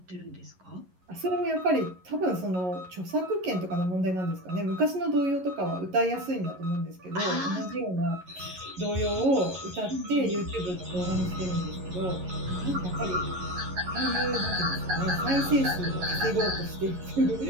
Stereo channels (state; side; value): late; left; 11 ms